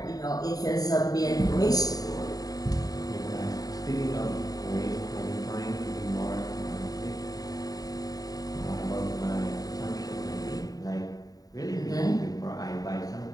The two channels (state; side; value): late; right; 0.18 ms